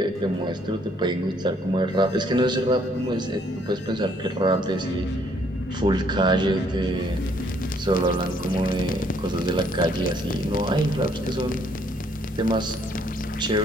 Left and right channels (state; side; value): normal; both; correlation 0.66